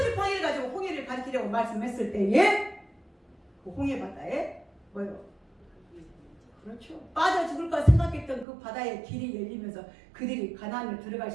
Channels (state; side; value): drops out; left; at 8.5 s